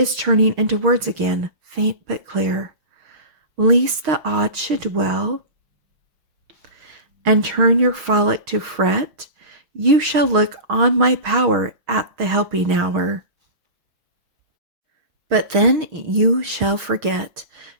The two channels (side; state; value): left; late; 6.4 ms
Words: turning into words again, faint but clear. Least the odd should dwell, and turn your frolic to fret, you shall look on my power at the helping hour. But then you shall forget.